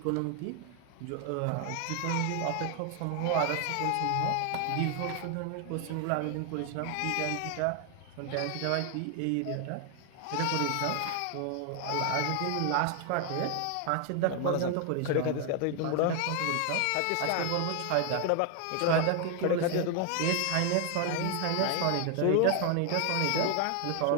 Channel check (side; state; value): both; different; correlation 0.00